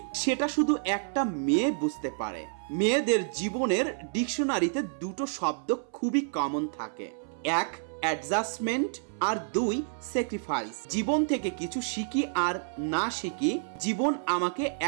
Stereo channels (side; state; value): left; silent; 58 dB below the other